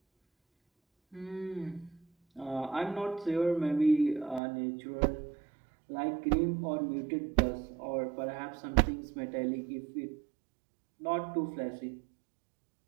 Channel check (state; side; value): drops out; left; at 4.4 s